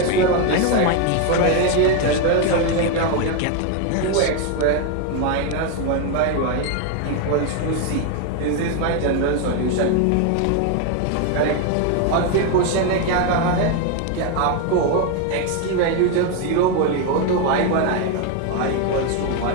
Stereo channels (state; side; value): different; both; correlation 0.01